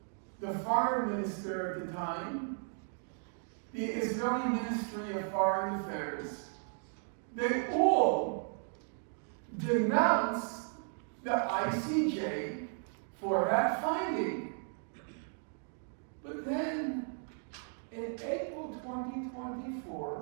the foreign minister at the time, the Israeli Ministry of Foreign Affairs, they all denounced the ICJ for that finding. But then, in April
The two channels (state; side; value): silent; left; 54 dB below the other